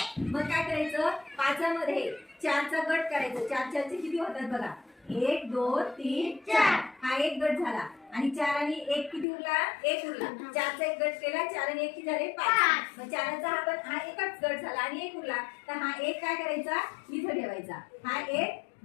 मग काय करायचं? पाचामध्ये 4चा गट करायचं. 4 4चे किती होतात बघा? 1 2 3 4. हा एक गट झाला. आणि 4 आणि 1 किती उरला? 1 उरला. 4चा एक गट केला. 4 आणि 1 किती झाले? 5. मग 4चा हा एकच गट झाला आणि 1 उरला. तर हा एक काय करायचा? इथं ठेवायचा. हा एक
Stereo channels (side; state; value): right; drops out; at 9.2 s